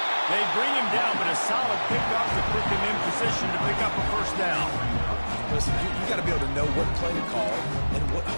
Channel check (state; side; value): inverted; both; correlation -1.00